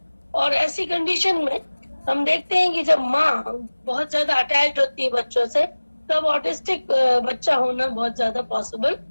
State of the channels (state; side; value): inverted; both; correlation -1.00